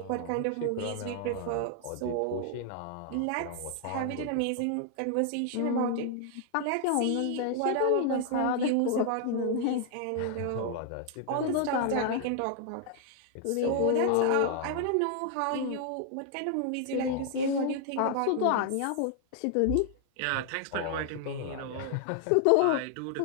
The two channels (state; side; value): different; both; correlation 0.00